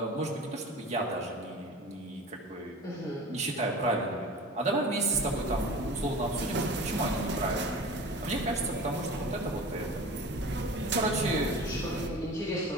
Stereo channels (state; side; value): normal; both; correlation 0.36